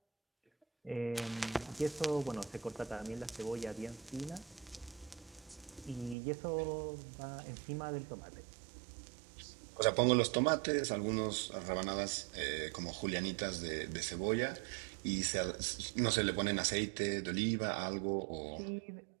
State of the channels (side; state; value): left; drops out; at 6.2 s